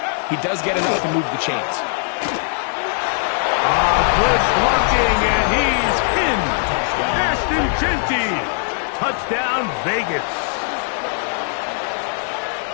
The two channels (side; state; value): right; silent; 66 dB below the other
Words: he he does get enough to move the chains. Good blocking, and he's in. Ashton Jeanty. Touchdown, Vegas.